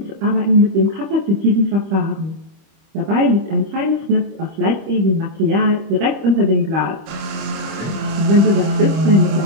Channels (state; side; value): late; left; 25 ms